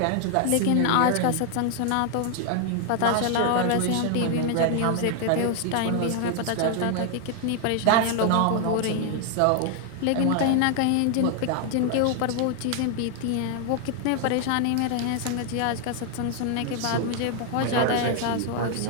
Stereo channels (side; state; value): both; different; correlation 0.00